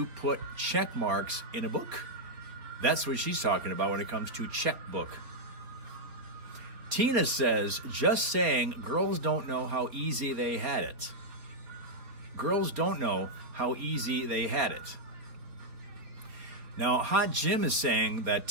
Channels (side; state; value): left; late; 4.3 ms